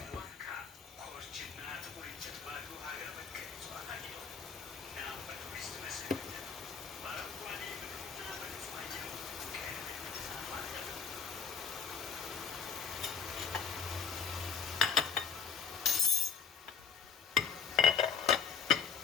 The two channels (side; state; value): right; quieter; 6.6 dB